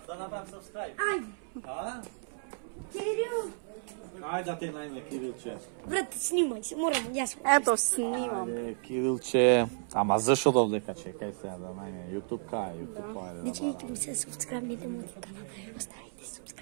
направам subscribe. Ајде. А? Кирил. Ајде да те најме Кирилче. Брат, снимај се, морам, јас. Ето, снимам. Ајде Кирилче. Ама зашо довдека чекај сега да најме YouTube кај YouTube ајде. Не чекайте ми се субскрайбните мојот канал. Оставите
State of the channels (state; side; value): silent; left; 56 dB below the other